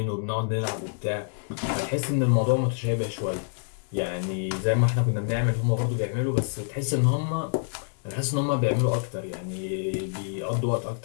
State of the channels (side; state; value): right; silent; 60 dB below the other